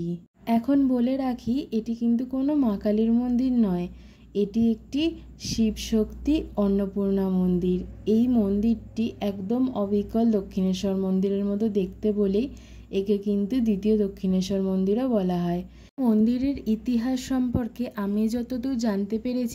এখন বলে রাখি, এটি কিন্তু কোনো মা কালীর মন্দির নয়, এটি একটি শিব শক্তি অন্নপূর্ণা মন্দির। এই মন্দিরটি একদম অবিকল দক্ষিণেশ্বর মন্দিরের মতো দেখতে বলেই একে কিন্তু দ্বিতীয় দক্ষিণেশ্বর মন্দিরও বলা হয়। মন্দিরের ইতিহাস সম্পর্কে আমি যতদূর জানতে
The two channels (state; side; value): identical; both; correlation 1.00